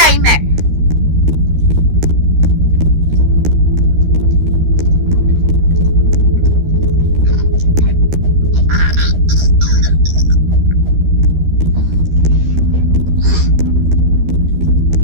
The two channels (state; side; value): late; left; 13 ms